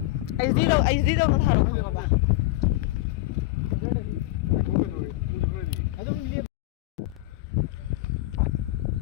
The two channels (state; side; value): quieter; right; 18.1 dB